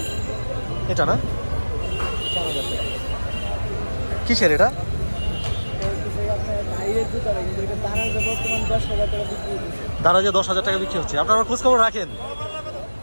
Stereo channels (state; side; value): inverted; both; correlation -1.00